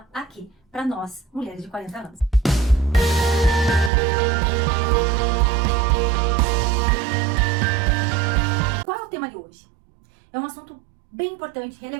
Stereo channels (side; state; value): left; drops out; at 3.9 s